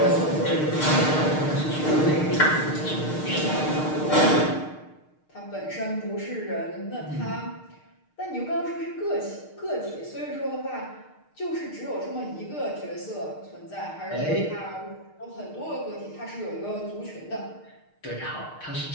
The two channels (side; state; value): right; late; 6.5 ms